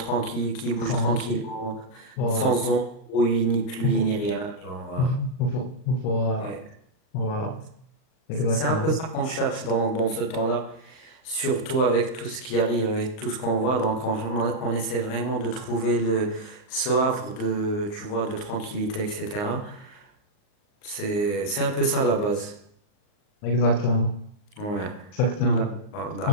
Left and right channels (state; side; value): late; right; 39 ms